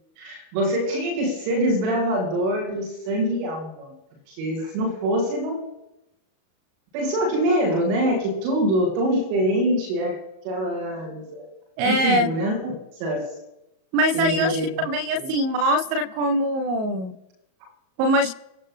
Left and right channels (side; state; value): left; late; 37 ms